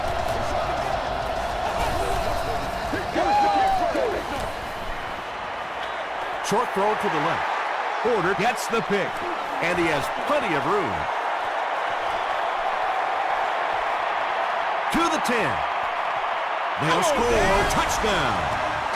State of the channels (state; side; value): identical; both; correlation 1.00